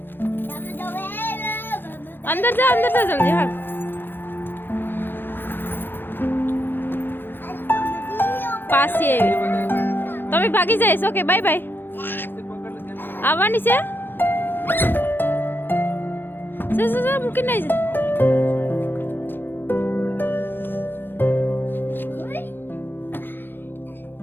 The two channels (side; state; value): right; late; 0.099 ms